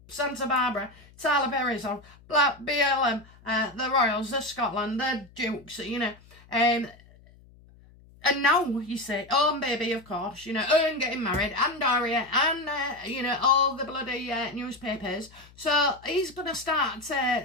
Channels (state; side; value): noise; left; hum, 25 dB below the sound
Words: Santa Barbara, Tyler Berry's on, Black BLM, the Royals, the Scotland, the Dukes, you know, and now you say, and baby, of course, you know, and getting married, and Daria, and, you know, all the bloody newspapers. So he's going to start